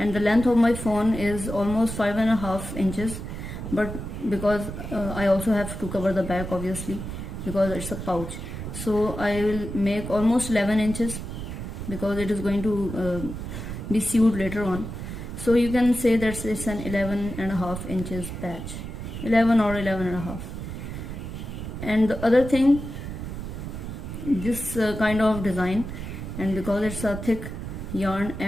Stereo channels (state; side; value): noise; right; rumble, 7 dB below the sound